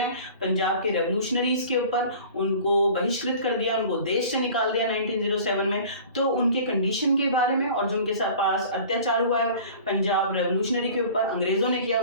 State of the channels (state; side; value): inverted; both; correlation -0.43